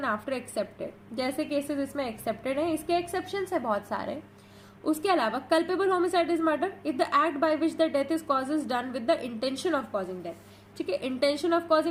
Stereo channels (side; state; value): both; identical; correlation 1.00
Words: after excepted, जैसे केसेस इसमें एक्सेप्टेड है, इसके एक्सेप्शंस है बहुत सारे। उसके अलावा culpable homicide is murder if the act by which the death is cause is done with the intention of causing death, ठीक है। इंटेंशन ऑफ